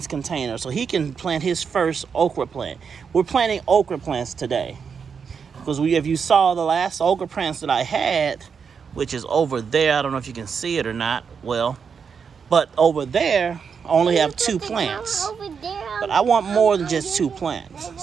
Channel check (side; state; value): left; quieter; 6.3 dB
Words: container so he can plant his first okra plant. We're planting okra plants today because if you saw the last okra plants that I had, which is over there, I don't know if you can see it or not, well, but over there I only have 2 plants, but I want more than just 2